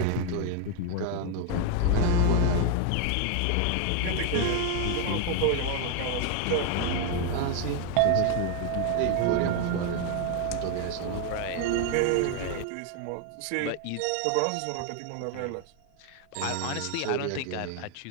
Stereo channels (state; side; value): different; both; correlation 0.01